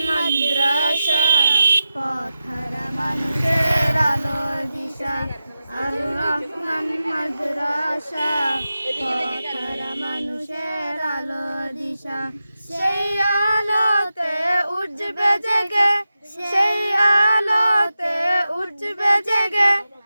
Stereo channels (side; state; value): both; inverted; correlation -0.92